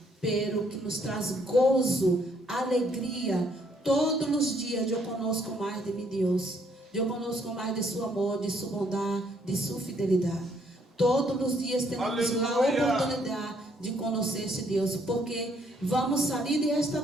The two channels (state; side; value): normal; both; correlation 0.68